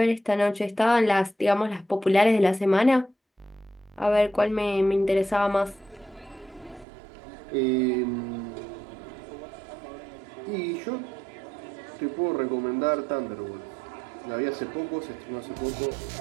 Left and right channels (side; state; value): left; drops out; at 6.9 s